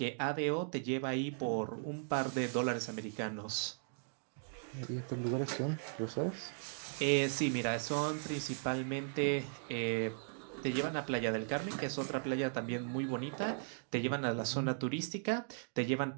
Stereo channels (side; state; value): left; silent; digital silence